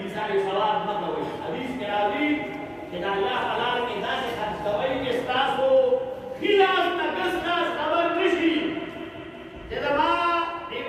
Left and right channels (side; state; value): both; identical; correlation 1.00